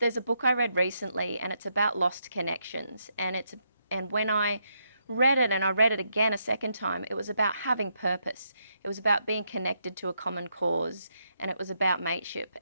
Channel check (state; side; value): inverted; both; correlation -0.79